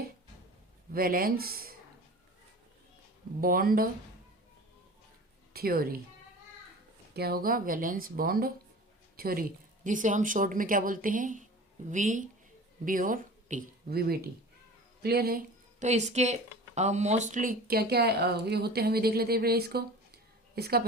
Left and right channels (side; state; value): both; normal; correlation 0.38